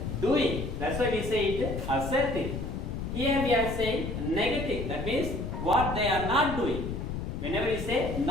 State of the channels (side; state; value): left; noise; rumble, 5 dB below the sound